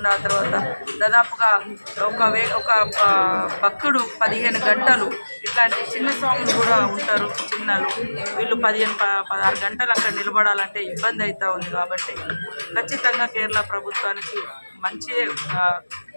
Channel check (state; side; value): inverted; both; correlation -1.00